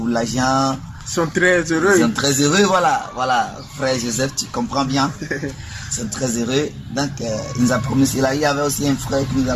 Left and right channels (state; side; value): identical; both; correlation 1.00